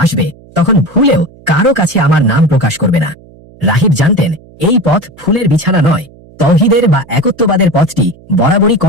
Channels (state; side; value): noise; right; hum, 25 dB below the sound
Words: আসবে তখন ভুলেও কারো কাছে আমার নাম প্রকাশ করবে না। রাহিব জানতেন এই পথ ফুলের বিছানা নয়, তৌহিদের বা একত্ববাদের পথটি বরাবরই